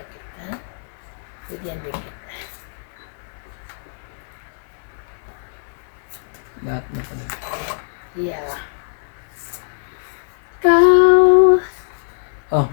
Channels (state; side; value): silent; right; 64 dB below the other